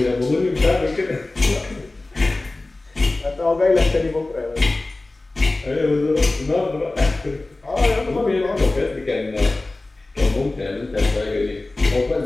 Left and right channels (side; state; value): right; quieter; 3.0 dB